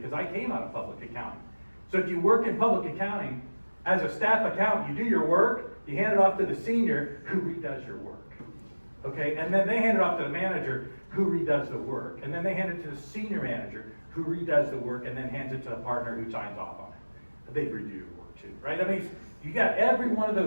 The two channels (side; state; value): both; inverted; correlation -1.00